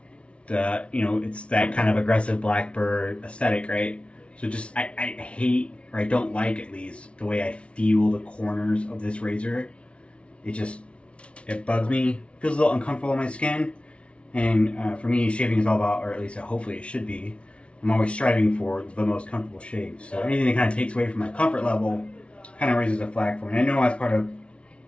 it's that kind of aggressive Blackbird aesthetic, right? So just I hate, or I don't like at least, the way I feel the corners of this razor. It bugs me. Feels a little uncomfortable on my skin. And for me, shaving is all about, or at least hopefully it should be, I'm always striving for the most comfortable shave. So anything that kind of takes away from my comfort level kind of raises a flag for me. I know as part of,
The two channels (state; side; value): late; right; 0.060 ms